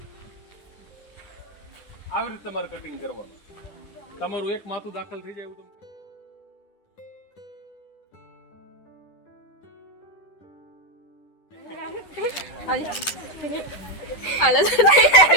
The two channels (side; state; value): right; late; 11 ms